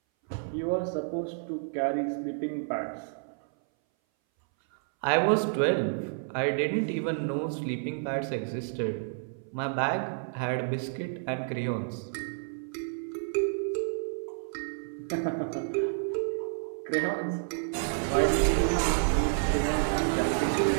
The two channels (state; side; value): silent; left; 58 dB below the other